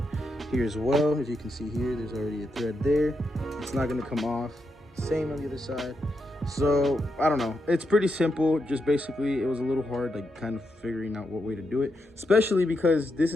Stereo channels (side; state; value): both; normal; correlation 0.84